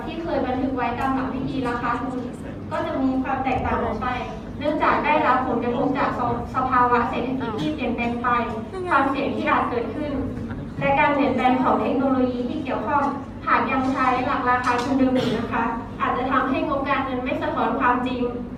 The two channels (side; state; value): both; identical; correlation 1.00